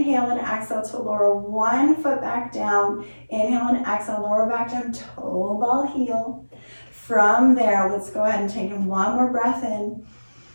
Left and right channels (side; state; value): both; inverted; correlation -1.00